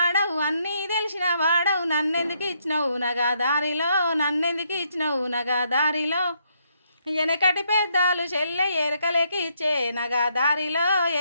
అన్నీ తెలిసిన వాడవు నన్నెందుకు ఇచ్చినవు నగదారిలో, నన్నెందుకు ఇచ్చినవు నగదారిలో. వెనకటి పెద్దాలు చెల్లె ఎరకలేకి ఇచ్చే నగదారిలో,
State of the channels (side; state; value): both; inverted; correlation -0.74